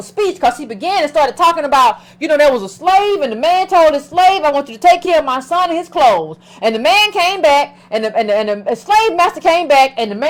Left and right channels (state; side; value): identical; both; correlation 1.00